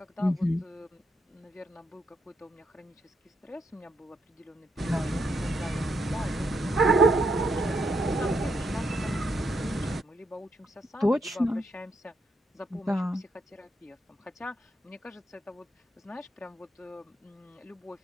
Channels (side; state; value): both; normal; correlation 0.76